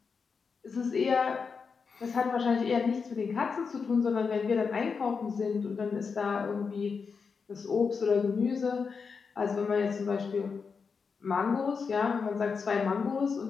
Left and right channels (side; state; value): right; quieter; 5.4 dB